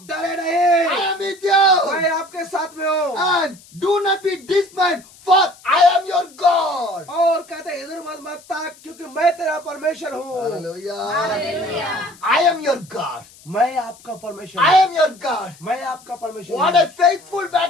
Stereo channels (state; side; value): noise; left; hiss, 24 dB below the sound